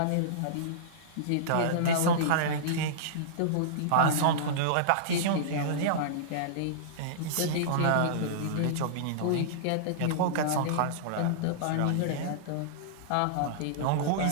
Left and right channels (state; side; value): different; both; correlation -0.03